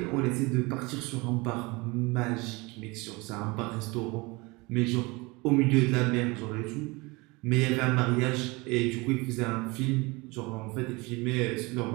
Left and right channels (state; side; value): quieter; left; 25.1 dB